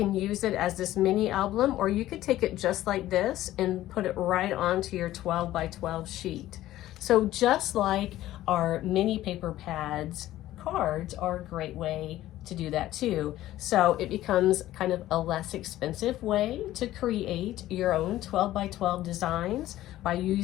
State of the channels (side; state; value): right; quieter; 14.6 dB